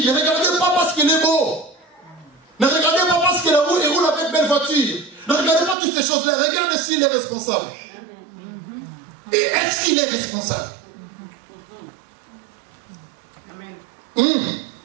ne regardez pas parce qu'il est beau. Ne regardez pas parce qu'il roule avec belle voiture. Ne regardez pas toutes ces choses-là. Regardez s'il est responsable. Et est-ce qu'il est responsable?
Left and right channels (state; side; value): drops out; left; at 5.8 s